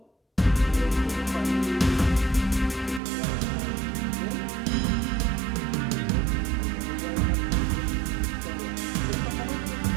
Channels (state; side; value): drops out; left; at 3.0 s